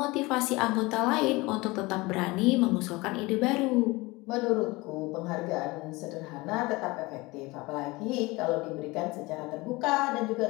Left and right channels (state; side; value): quieter; right; 22.8 dB